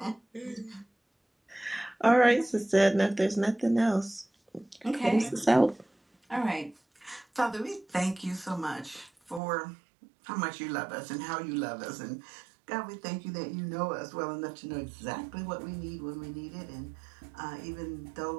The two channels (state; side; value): drops out; left; at 9.4 s